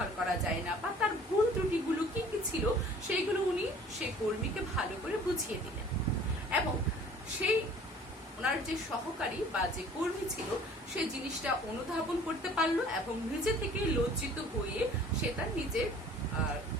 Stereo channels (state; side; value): normal; both; correlation 0.50